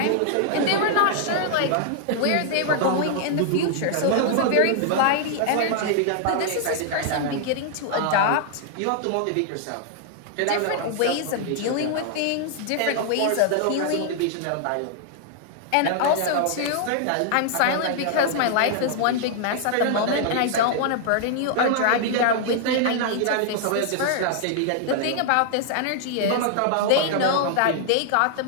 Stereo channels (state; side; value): different; both; correlation 0.00